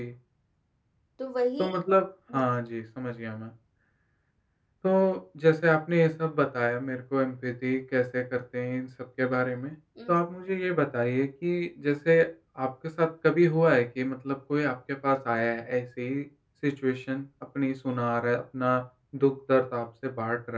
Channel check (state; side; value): identical; both; correlation 1.00